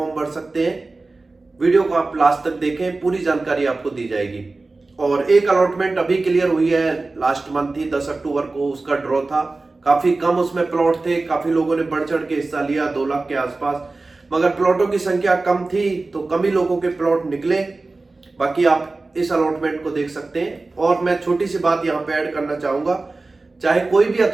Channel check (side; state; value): left; quieter; 3.4 dB